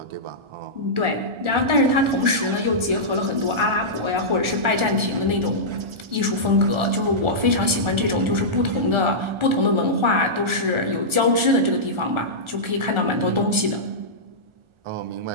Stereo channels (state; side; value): late; left; 1.4 ms